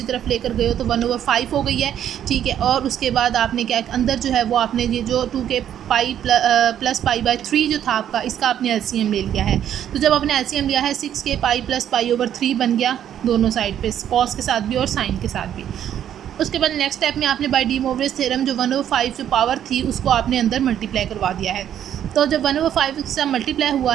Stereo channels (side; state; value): left; quieter; 10.2 dB